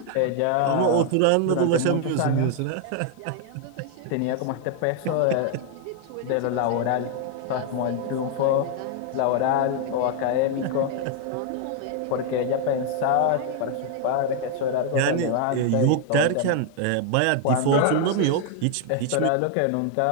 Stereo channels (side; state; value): both; different; correlation 0.00